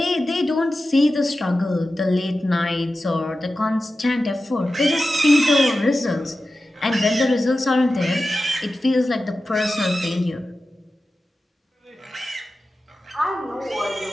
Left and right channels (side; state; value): both; normal; correlation 0.93